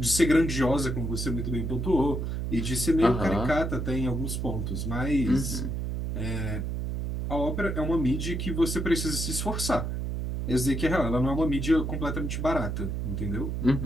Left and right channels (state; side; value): noise; right; hum, 2 dB below the sound